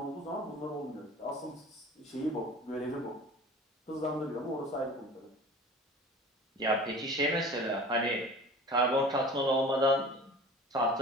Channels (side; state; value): both; normal; correlation 0.41